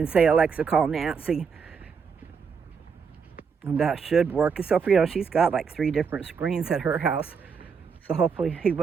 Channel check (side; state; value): left; quieter; 6.0 dB